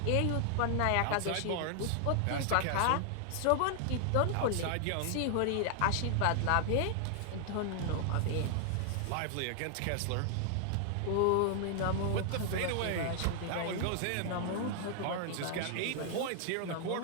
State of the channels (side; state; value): both; different; correlation 0.00